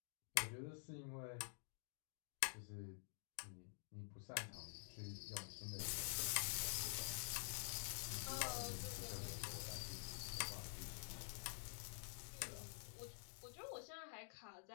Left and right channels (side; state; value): right; silent; digital silence